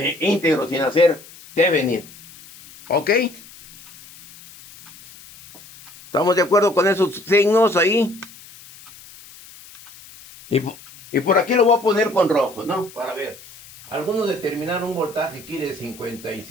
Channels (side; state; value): left; noise; hiss, 20 dB below the sound